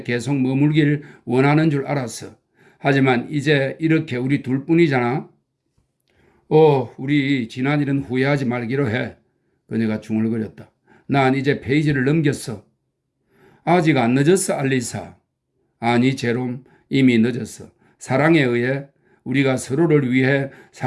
계속 머물길 원하는 줄 알았어. 하지만 이제 이렇게 우리 둘뿐이잖아. 우리 지난 일은 후회하지 말기로 해. 그녀가 중얼거렸다. 난 이제 페이지를 넘겼어. 아직 안 늦었어, 알리사. 아니, 제롬, 이미 늦었어. 사랑에 의해 우리가 서로를 위해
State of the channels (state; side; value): identical; both; correlation 1.00